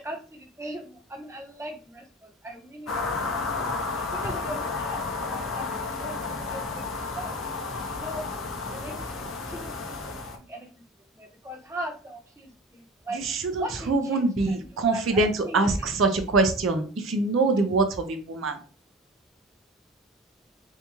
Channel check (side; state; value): both; normal; correlation 0.33